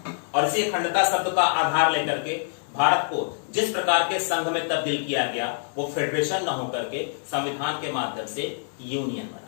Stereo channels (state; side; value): silent; right; 61 dB below the other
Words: और इसी अखंडता शब्द का आधार लेकर के भारत को जिस प्रकार के संघ में तब्दील किया गया, वो फेडरेशन न होकर के संविधान के माध्यम से यूनियन